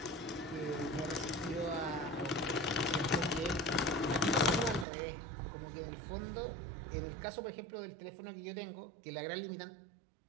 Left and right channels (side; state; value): left; drops out; at 4.9 s